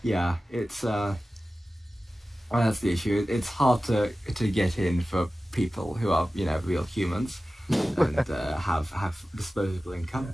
it's that's the issue. It's hard to get in for people who are real humans. and have disposable income,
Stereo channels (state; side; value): normal; both; correlation 0.95